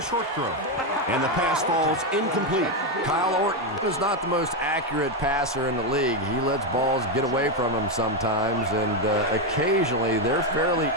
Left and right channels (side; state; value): both; normal; correlation 0.07